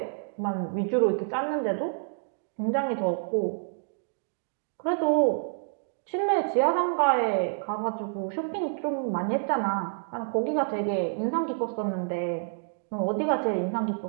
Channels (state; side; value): silent; left; digital silence